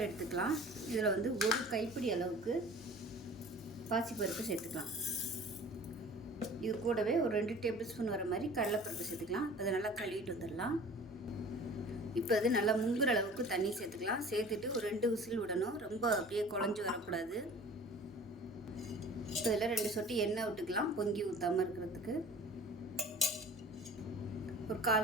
எடுத்துக்கலாம். இதில் வந்து ஒரு கைப்பிடி அளவுக்கு பாசிப்பருப்பு சேர்த்துக்கலாம். இது கூடவே ஒரு 2 டேபிள் ஸ்பூன் வர மாதிரி கடலைப்பருப்பு சேர்த்துக்கலாம். அதை நல்லா கழுவிட்டு வந்துடலாம். இப்போ அது நல்லா முங்குற அளவுக்கு தண்ணி சேர்த்துக்கலாம். சேர்த்துட்டு ஒரு 2 விசில் விடணும். ரொம்ப அப்படியே குழஞ்சி வரக்கூடாது. இப்போ இதில் 2 சொட்டு எண்ணெய் விட்டுக்கலாம், பொங்கி ஊற்றாமல் இருக்கிறதுக்கு. ஒரு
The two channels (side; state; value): both; normal; correlation 0.44